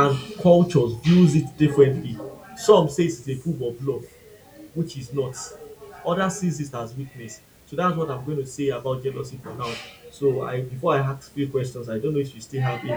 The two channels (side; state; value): both; identical; correlation 1.00